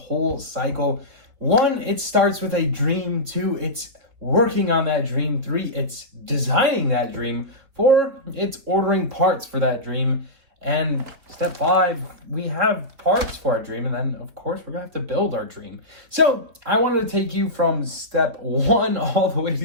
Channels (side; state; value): left; late; 3.5 ms